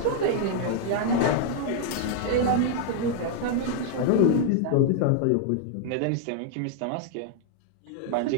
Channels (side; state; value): both; different; correlation -0.01